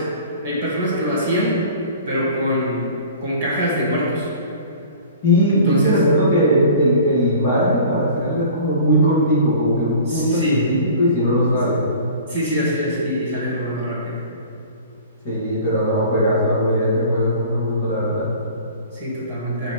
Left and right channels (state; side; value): inverted; both; correlation -0.43